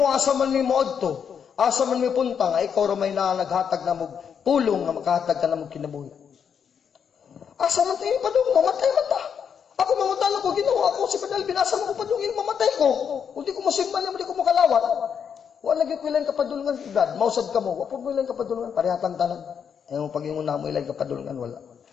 asa man mi moadto, asa man mi punta nga ikaw ra may naghatag na mo pulong nga makahatag ka na mo kinabuhi. Asa man tayo padung mamatay man ta. Ako mangutan ko, ginawa ako si Padal, binasa mo ko padulungan, mamatay ko. Kung di ko masimban niya, di ko makalawat. Wala naging kailan kapadulungan, Brad. Mausad ka mo, wapag mo ilang kapadulungan, parihatang tanan. Ayaw pag-ingon na mo ilang kapadulungan, wala.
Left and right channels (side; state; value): right; quieter; 7.4 dB